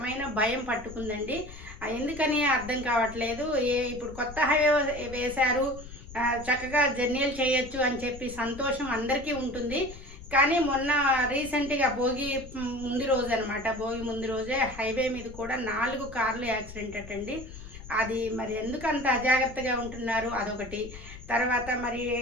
భయం పట్టుకుందండి. ఎందుకని అర్థం కావట్లేదు. ఇప్పుడు కొత్త హైవే వేశారు, చక్కగా జర్నీలు చేయొచ్చు అని చెప్పి సంతోషం అందరికీ ఉంటుంది. కానీ మొన్న రీసెంట్గా భోగి ముందు రోజు అనమాట, భోగి ముందు రోజే హైవే మీద కూడా 4 కార్లు యాక్సిడెంట్ అటండి. అది మరి ఎందుకు అంత అజాగ్రత్తగా ఉంటున్నారు అదొకటి. తర్వాత మరి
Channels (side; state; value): left; noise; rumble, 15 dB below the sound